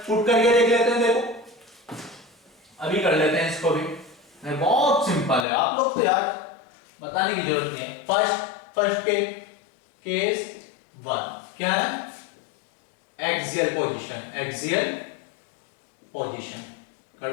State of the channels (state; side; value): drops out; right; at 5.5 s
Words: पुट करके देख लेते हैं, देखो अभी कर लेते हैं इसको भी, बहुत सिंपल है, आप लोग तो यार बताने की जरूरत नहीं है। फर्स्ट के केस 1 क्या है? एक्सियल पोजीशन